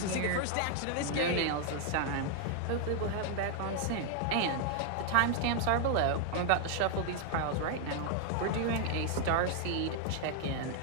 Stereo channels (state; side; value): different; both; correlation 0.00